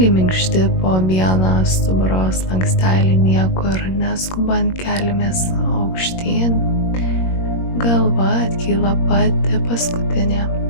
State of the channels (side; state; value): right; late; 21 ms